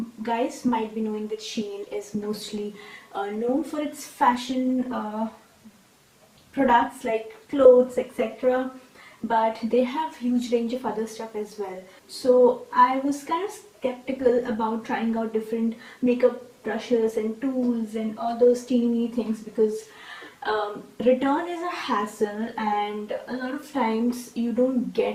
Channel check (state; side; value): identical; both; correlation 1.00